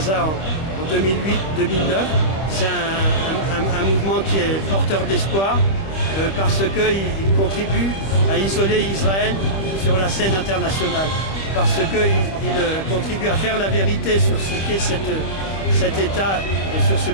en 2008-2009. C'est un mouvement qui est porteur d'espoir parce qu'il contribue à isoler Israël sur la scène internationale, parce qu'il contribue à faire la vérité sur ce qu'est cet État et sur ce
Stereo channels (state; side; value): late; right; 26 ms